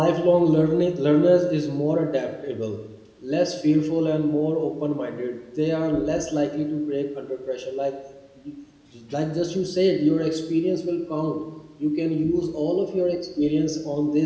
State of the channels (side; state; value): both; identical; correlation 1.00